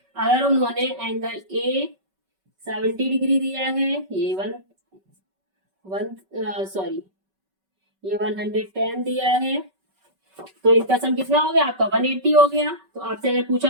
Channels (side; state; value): left; late; 5.3 ms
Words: अगर उन्होंने एंगल ए 70 डिग्री दिया है, ये 110 दिया है, तो इनका सम कितना हो गया आपका? 180 हो गया। तो आपसे अगर पूछा